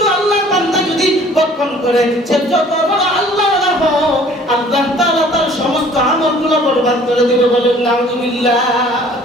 আল্লাহর বান্দা যদি বক্ষণ করে, সে যত বড় আল্লাহওয়ালা হোক, আল্লাহ তাআলা তার সমস্ত আমলগুলো বরবাদ করে দিবে বলেন নাউযুবিল্লাহ।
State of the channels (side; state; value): both; normal; correlation 0.53